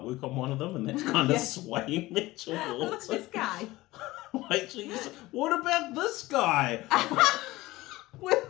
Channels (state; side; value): quieter; right; 18.8 dB